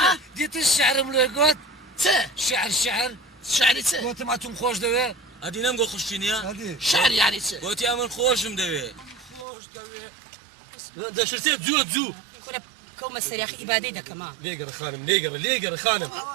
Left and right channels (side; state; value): left; drops out; at 9.5 s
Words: دیتە شعرم لێ گوت چێ شعر شعری چێ گوتم ئەتون خۆش دەوێ ئەدی نەم بۆ خوشینە شعر یانی چێ گوتی ئەمن خۆشم دەوێ خۆش دەوێ دەشتێت زووە زوو كنا كوما سريخ إبادي دا كمان لێگەڕ خانم لێگەڕ خانم